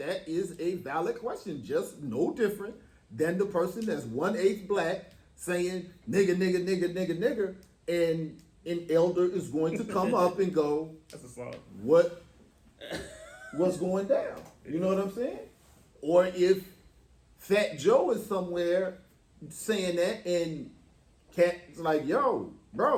is a valid question, just no different than the person that's 1/8 black saying nigga, nigga, nigga, nigga, nigga, and an elder is going to come up and go, That's a song. what's going down? You know what I'm saying? Or if Fat Joe is somewhere saying that and Cat's like, yo,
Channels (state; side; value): identical; both; correlation 1.00